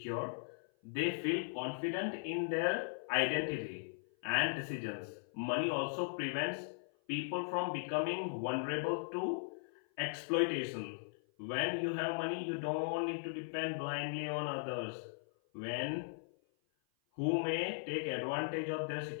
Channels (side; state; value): right; silent; 52 dB below the other